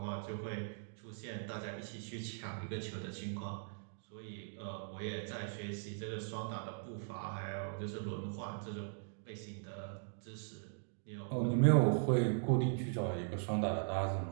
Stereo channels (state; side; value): silent; left; digital silence